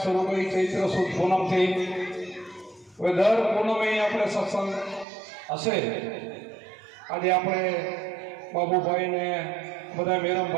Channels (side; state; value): left; drops out; at 5.1 s